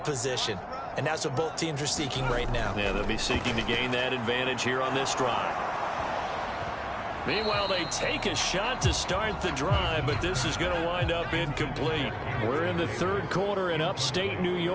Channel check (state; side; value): identical; both; correlation 1.00